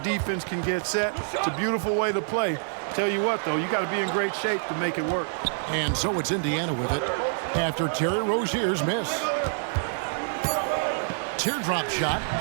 can get set. It's a beautiful way to play. Tell you what, though, you got to be in great shape to make it work. And so it's Indiana with it after Terry Rozier's miss. Teardrop shot.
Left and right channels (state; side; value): silent; left; digital silence